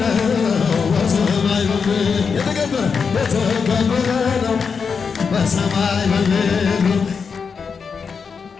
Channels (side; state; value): right; quieter; 5.7 dB